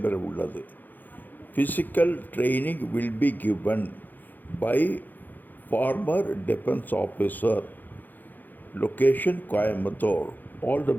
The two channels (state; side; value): late; right; 0.086 ms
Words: உள்ளது. Physical training will be given by former defense officer. Location Coimbatore. All the